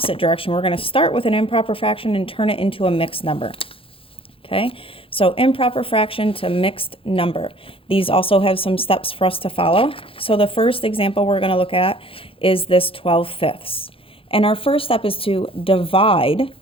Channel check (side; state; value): right; late; 0.27 ms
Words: direction. We're going to start with an improper fraction and turn it into a mixed number. Okay, so improper fraction to mixed number. These also have some steps for us to follow. So the first example we're going to look at is this 12/5. And our first step is to divide.